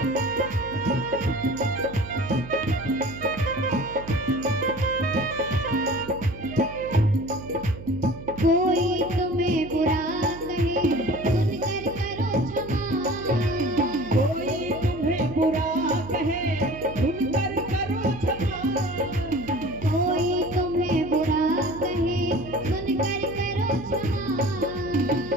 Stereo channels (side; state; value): right; noise; hum, 14 dB below the sound